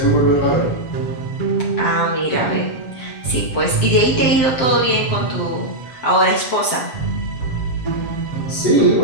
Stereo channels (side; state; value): right; late; 7.7 ms